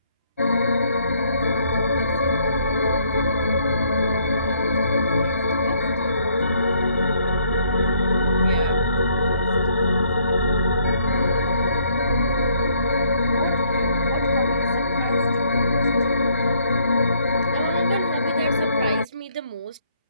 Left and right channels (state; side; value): inverted; both; correlation -0.67